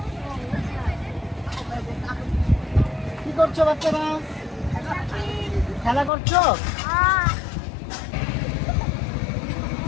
কি করছো বাচ্চারা? খেলা করছো?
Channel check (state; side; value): drops out; right; at 6.1 s